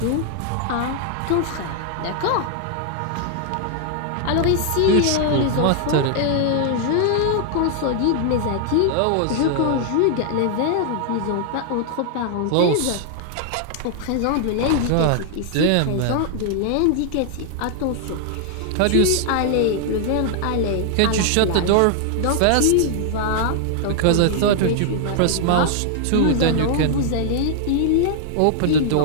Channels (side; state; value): both; different; correlation 0.00